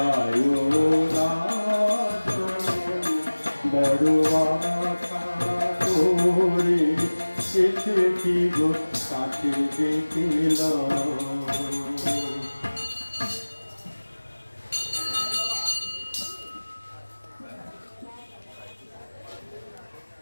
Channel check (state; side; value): inverted; both; correlation -1.00